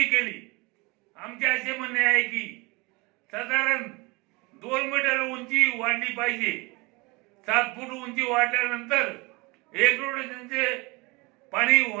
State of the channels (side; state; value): left; quieter; 25.7 dB